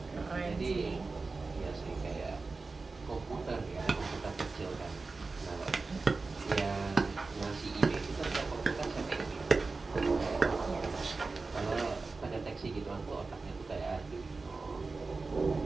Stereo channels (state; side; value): quieter; left; 3.9 dB